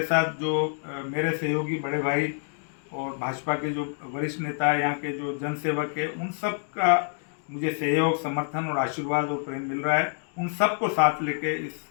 साथ जो मेरे सहयोगी बड़े भाई और भाजपा के जो वरिष्ठ नेता है, यहाँ के जो जनसेवक है, उन सब का मुझे सहयोग, समर्थन और आशीर्वाद और प्रेम मिल रहा है। उन सबको साथ लेके इस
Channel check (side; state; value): right; silent; 60 dB below the other